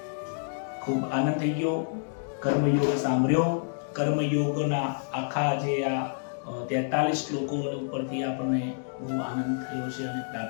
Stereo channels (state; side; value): silent; right; digital silence